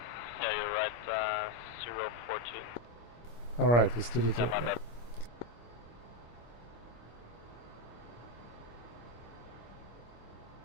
you're right, 014. Alright, let's do the Yeah, 2. my bad.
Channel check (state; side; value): late; right; 25 ms